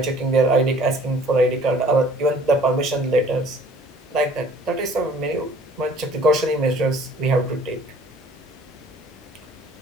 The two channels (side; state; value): both; normal; correlation 0.53